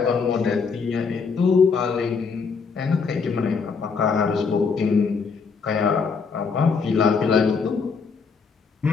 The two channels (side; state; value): right; quieter; 5.3 dB